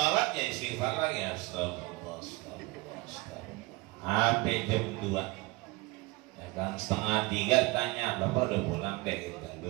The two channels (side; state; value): left; quieter; 23.3 dB